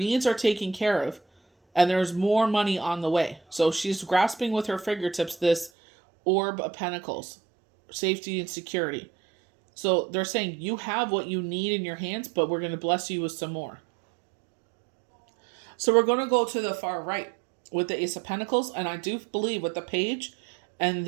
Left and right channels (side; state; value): left; drops out; at 5.7 s